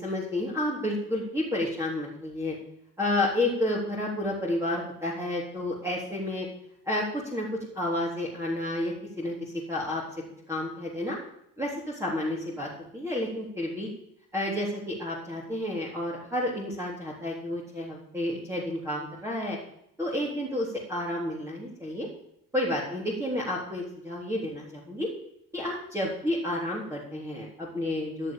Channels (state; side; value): normal; both; correlation 0.49